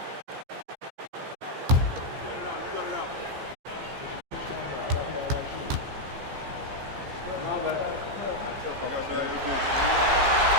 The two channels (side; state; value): left; late; 15 ms